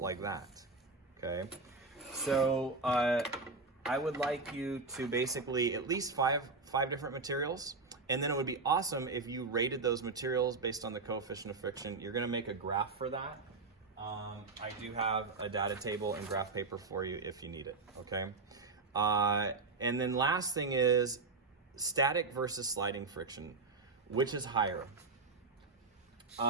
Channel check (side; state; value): left; quieter; 4.0 dB